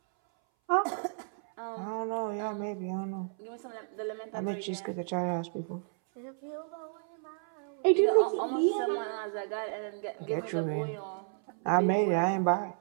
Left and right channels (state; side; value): silent; left; 57 dB below the other